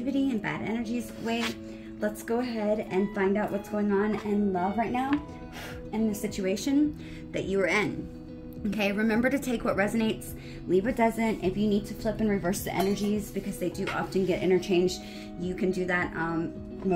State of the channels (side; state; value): both; identical; correlation 1.00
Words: and bad energies away. Let's go ahead and find out what's going on in love right now in the situation that you are in. Okay, remember to take what resonates, leave what doesn't. If you need to flip and reverse the energies because they do often get interchanged, you can do that